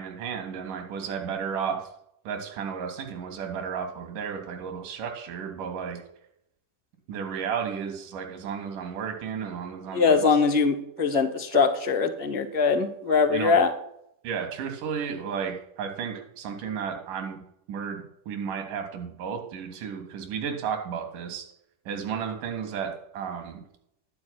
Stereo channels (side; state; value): left; late; 10 ms